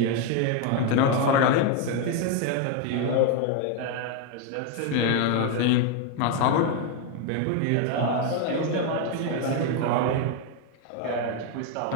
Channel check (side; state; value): both; different; correlation 0.01